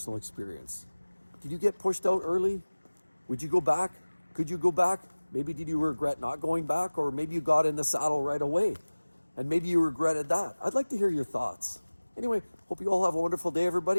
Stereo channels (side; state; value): both; inverted; correlation -1.00